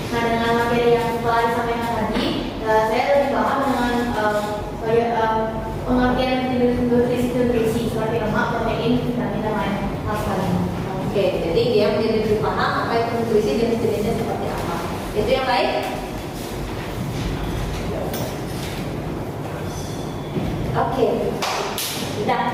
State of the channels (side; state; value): both; identical; correlation 1.00